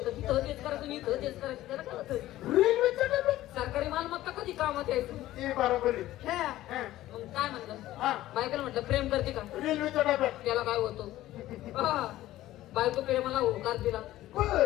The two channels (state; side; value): quieter; right; 15.1 dB